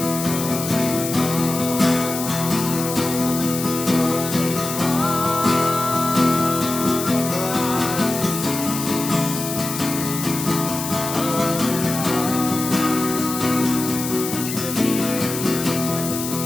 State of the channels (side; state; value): left; noise; hiss, 6 dB below the sound